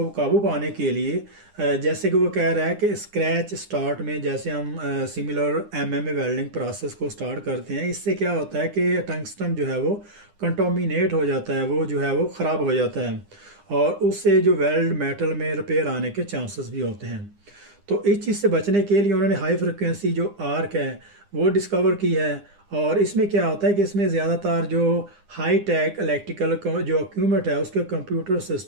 काबू पाने के लिए, जैसे कि वो कह रहा है कि स्क्रैच स्टार्ट में जैसे हम सिमिलर MMA वेल्डिंग प्रोसेस को स्टार्ट करते हैं, इससे क्या होता है कि टंगस्टन जो है वो कंटामिनेट हो जाता है, वो जो है वो ख़राब हो जाता है और उससे जो वेल्ड मेटल में रिपेयर आने के चांसेस भी होते हैं। तो इस चीज़ से बचने के लिए उन्होंने हाई फ्रिक्वेंसी जो आर्क है वो डिस्कवर की है। और इसमें क्या होता है कि इसमें ज़्यादातर जो हाई टेक इलेक्ट्रिकल जो इक्विपमेंट है उसके कंप्यूटर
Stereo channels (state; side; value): late; left; 9.8 ms